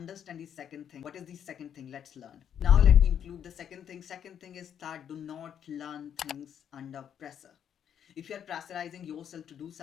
the second thing. What is the second thing? Let's learn. Now let me include the second thing. Second thing is that do not learn things under pressure. If you are pressurizing yourself to do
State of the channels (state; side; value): quieter; right; 8.9 dB